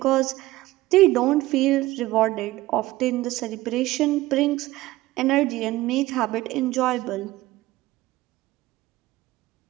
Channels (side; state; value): left; quieter; 17.7 dB